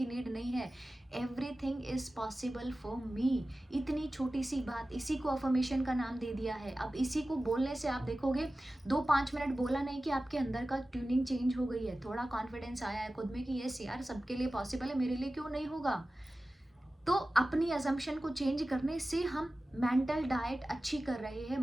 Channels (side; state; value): both; normal; correlation 0.95